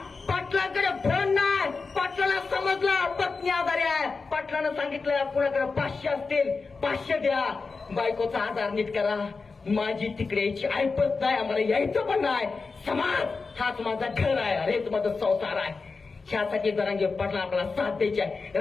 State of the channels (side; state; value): right; quieter; 4.4 dB